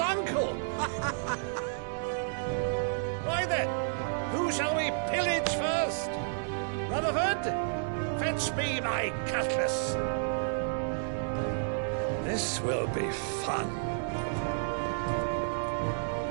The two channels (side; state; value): left; silent; digital silence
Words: Why then, who shall we pillage first? Rutherford, fetch me my cutlass. This will be fun.